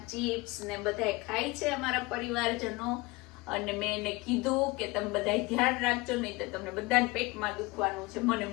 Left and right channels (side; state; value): right; quieter; 23.2 dB